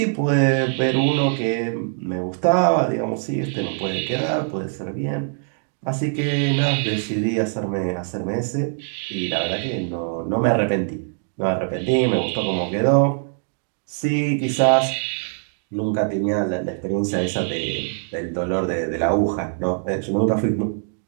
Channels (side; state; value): left; silent; 64 dB below the other